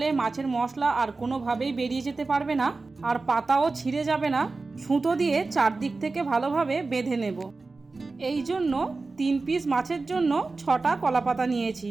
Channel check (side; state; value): left; quieter; 3.7 dB